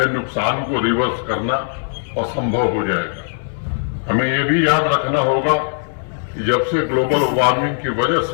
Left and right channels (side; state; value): right; silent; digital silence